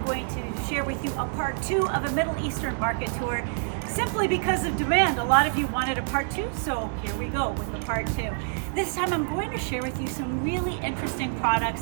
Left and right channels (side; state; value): left; silent; 60 dB below the other